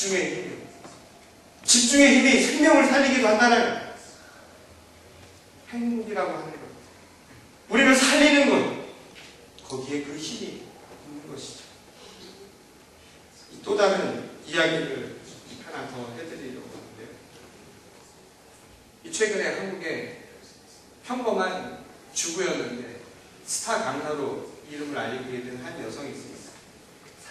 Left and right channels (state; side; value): identical; both; correlation 1.00